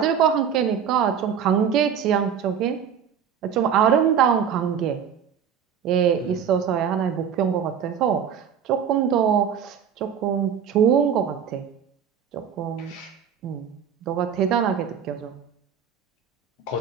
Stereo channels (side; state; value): left; quieter; 7.9 dB